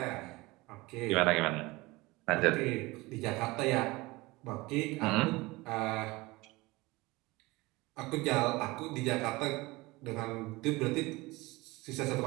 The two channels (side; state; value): left; quieter; 22.0 dB